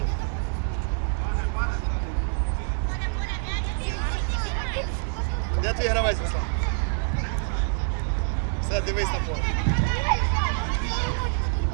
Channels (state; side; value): silent; left; digital silence